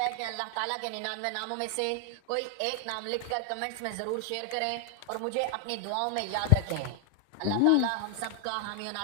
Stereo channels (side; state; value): both; different; correlation 0.00